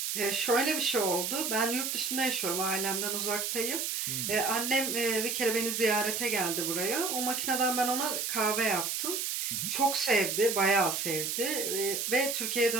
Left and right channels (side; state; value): right; noise; hiss, 1 dB below the sound